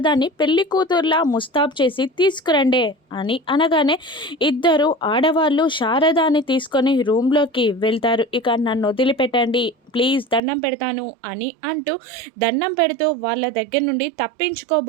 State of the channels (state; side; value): drops out; left; at 10.4 s